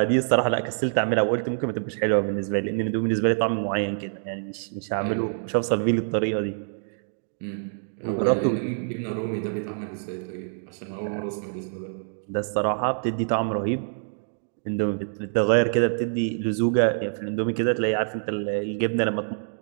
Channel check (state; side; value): silent; left; digital silence